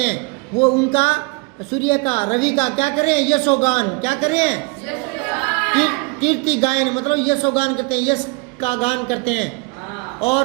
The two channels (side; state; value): left; quieter; 28.9 dB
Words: हैं, वो उनका सूर्य का, रवि का क्या कर रहे हैं, यशोगान। क्या कर रहे हैं, कीर्ति गायन, मतलब यशोगान करते हैं, यश का गान करते हैं। और